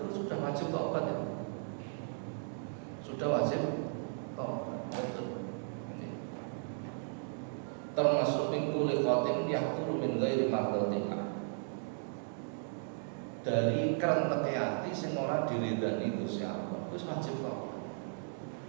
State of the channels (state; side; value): silent; left; digital silence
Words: sudah wajib taubat ya. Sudah wajib taubat. Betul. Termasuk min kulli qatin yahturu min ghairi mardatillah. Dari kerentek hati sing ora diridani Gusti Allah. Wis wajib taubat.